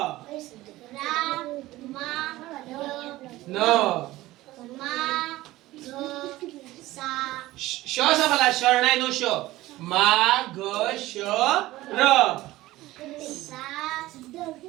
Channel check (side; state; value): left; quieter; 17.3 dB